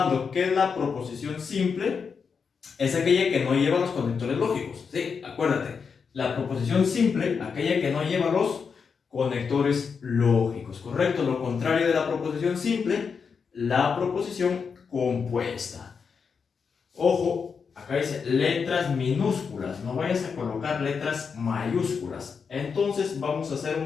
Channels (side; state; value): right; quieter; 5.9 dB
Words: que la proposición simple es aquella que no lleva los conectores lógicos, ¿sí? Acuérdate, la proposición simple, aquella que no lleva los conectores lógicos, ¿correcto? Lo contrario de la proposición simple, la proposición compuesta. Ojo, acá dice letras minúsculas, no vayas a colocar letras mayúsculas. Entonces vamos a hacer